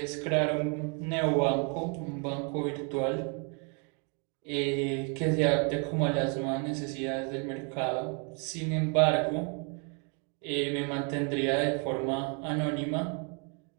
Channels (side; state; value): left; quieter; 37.3 dB